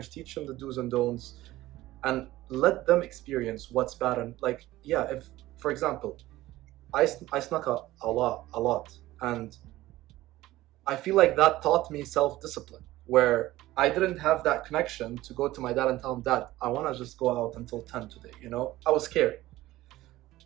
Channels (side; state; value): left; quieter; 16.6 dB